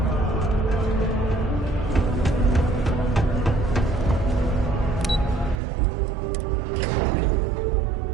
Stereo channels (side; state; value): left; drops out; at 5.6 s